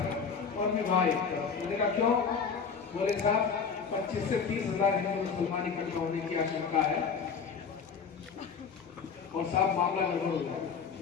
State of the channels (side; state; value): right; quieter; 6.1 dB